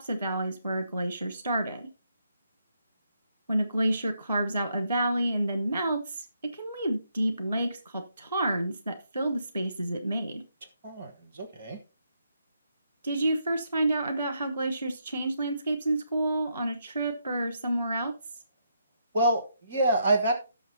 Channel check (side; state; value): both; inverted; correlation -0.78